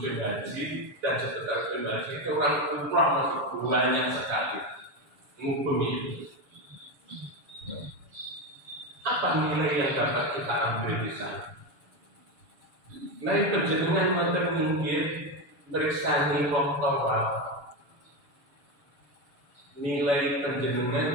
Haji dan sekitar haji itu orang umrah masih banyak sekali ngubumi. Apa nilai yang dapat kita ambil di sana? Nilai penjenengan wonten minggir bersani wong tawaf. Nilai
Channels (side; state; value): left; late; 7.0 ms